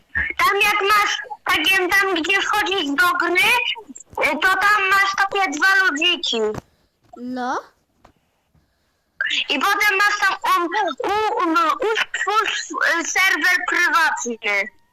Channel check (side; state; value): both; identical; correlation 1.00